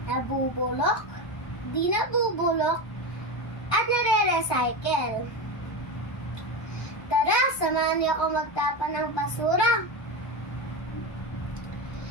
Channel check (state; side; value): late; right; 1.6 ms